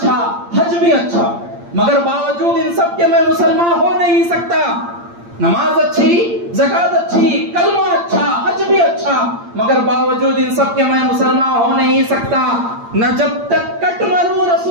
حج بھی اچھا, مگر باوجود ان سب کے میں مسلمان ہو نہیں سکتا. نماز اچھی, زکات اچھی, کلمہ اچھا, حج بھی اچھا, مگر باوجود ان سب کے میں مسلمان ہو نہیں سکتا. نہ جب تک کٹ مروں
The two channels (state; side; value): late; left; 8.7 ms